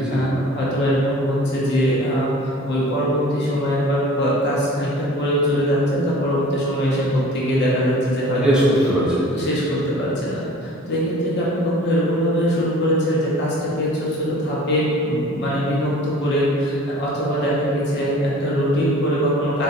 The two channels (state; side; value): normal; both; correlation 0.46